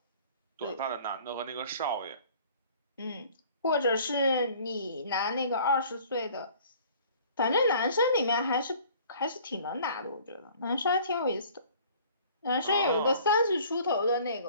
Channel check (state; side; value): inverted; both; correlation -0.52